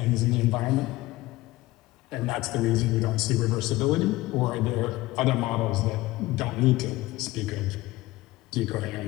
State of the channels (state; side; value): quieter; right; 18.7 dB